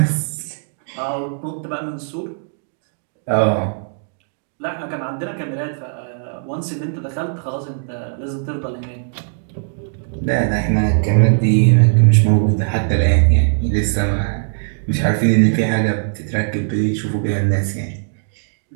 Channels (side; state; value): left; silent; digital silence